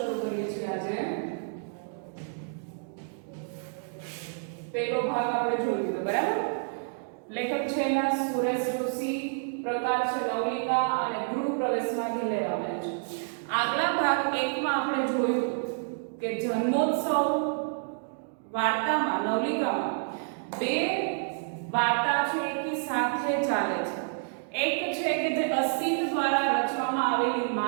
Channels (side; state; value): left; silent; digital silence